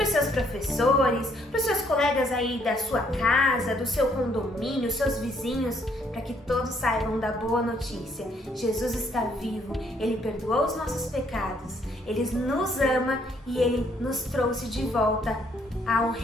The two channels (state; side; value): normal; both; correlation 0.68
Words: os seus professores, para os seus colegas aí da sua casa, do seu condomínio, seus vizinhos, para que todos saibam da boa notícia. Jesus está vivo, Ele perdoou os nossos pecados, Ele nos ama e Ele nos trouxe de volta ao